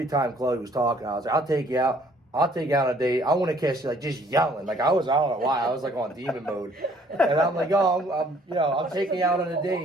time Chloe was talking, I was like, I'll take you out on a date. I want to kiss you, like just yelling. Like I don't know why. I was like on demon mode. And I'm like, I'm taking you out on a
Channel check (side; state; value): both; normal; correlation 0.60